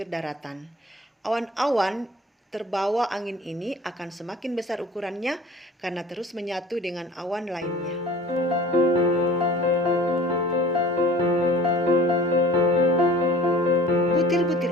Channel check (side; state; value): both; normal; correlation 0.43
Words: daratan. Awan-awan terbawa angin ini akan semakin besar ukurannya karena terus menyatu dengan awan lainnya.